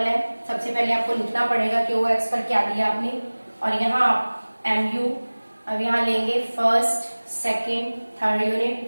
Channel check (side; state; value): both; inverted; correlation -1.00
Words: है, सबसे पहले आपको लिखना पड़ेगा कि OX पर क्या दिया आपने, और यहाँ MU। अब यहाँ लेंगे first, second, third unit,